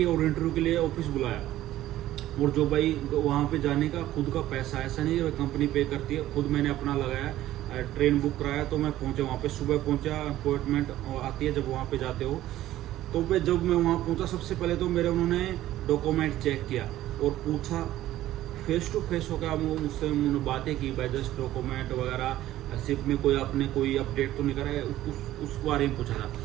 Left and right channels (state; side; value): quieter; left; 14.2 dB